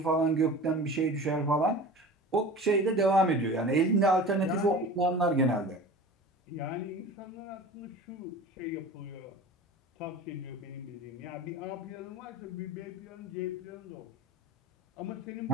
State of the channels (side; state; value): both; normal; correlation 0.37